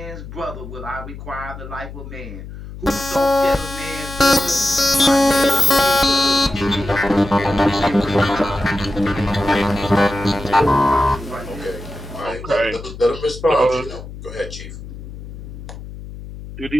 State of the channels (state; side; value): noise; left; hum, 12 dB below the sound